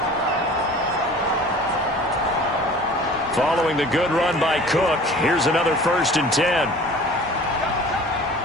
Following the good run by Cook, here's another 1st and 10.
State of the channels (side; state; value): both; normal; correlation 0.44